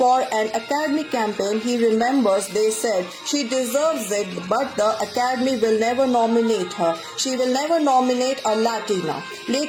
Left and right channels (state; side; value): identical; both; correlation 1.00